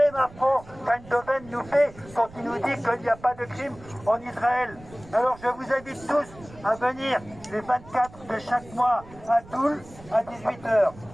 affront qu'Eindhoven nous fait quand il nous dit qu'il n'y a pas de crime en Israël. Alors je vous invite tous à venir les 24 de chaque mois à Toul à 18h.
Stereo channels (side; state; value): right; noise; rumble, 20 dB below the sound